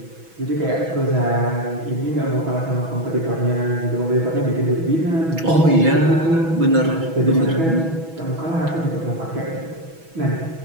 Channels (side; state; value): left; late; 6.1 ms